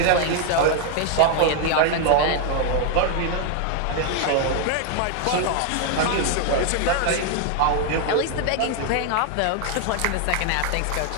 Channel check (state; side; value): different; both; correlation 0.00